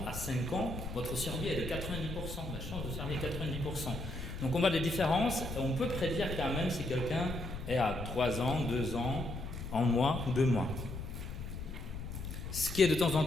à 5 ans, votre survie est de 90%, la chance de survie est 90%. Donc on voit des différences, et on peut prédire quand même si quelqu'un est à 3 ans, 2 ans, 1 mois ou 2 mois. Ce qui est de temps en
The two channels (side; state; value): left; noise; rumble, 7 dB below the sound